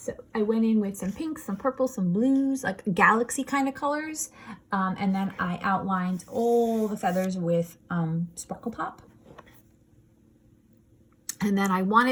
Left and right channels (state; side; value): identical; both; correlation 1.00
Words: I went in with some pinks, some purples, some blues, like galaxy kind of colors. And then I outlined all the feathers with Sparkle Pop. And then I